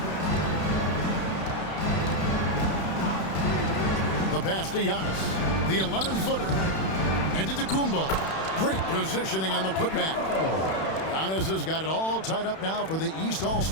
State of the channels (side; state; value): right; late; 31 ms